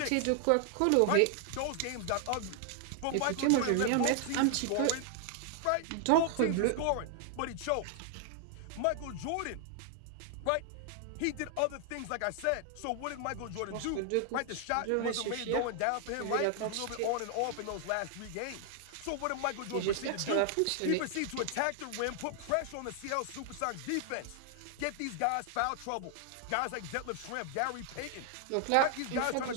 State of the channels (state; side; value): different; both; correlation 0.00